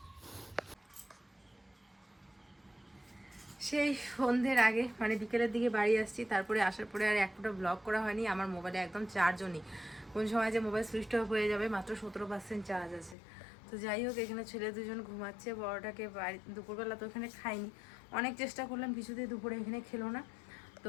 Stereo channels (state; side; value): drops out; right; at 13.2 s